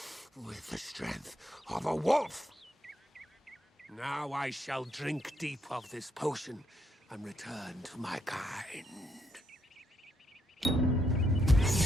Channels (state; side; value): normal; both; correlation 0.76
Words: with the strength of a wolf. Now I shall drink deep of this potion and return to my kind.